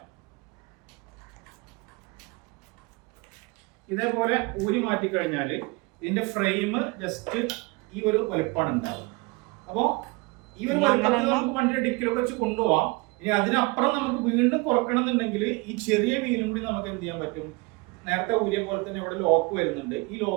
ഇതേപോലെ ഊരി മാറ്റി കഴിഞ്ഞാൽ ഇതിന്റെ ഫ്രെയിം ജസ്റ്റ് ഈ ഒരു വലുപ്പമാണ് ഉണ്ടാവുക. അപ്പോ ഈ ഒരു വലുപ്പത്തിൽ നമുക്ക് വണ്ടിയുടെ ഡിക്കിലൊക്കെ വെച്ച് കൊണ്ടുപോവാം. ഇനി അതിനപ്പുറം നമുക്ക് വീണ്ടും കുറക്കണമെന്നുണ്ടെങ്കിൽ ഈ ചെറിയ വീലും കൂടി നമുക്ക് എന്ത് ചെയ്യാൻ പറ്റും, നേരത്തെ ഊരിയ പോലെ തന്നെ ഇവിടെ ലോക്ക് വരുന്നുണ്ട്. ഈ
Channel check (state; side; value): quieter; left; 26.0 dB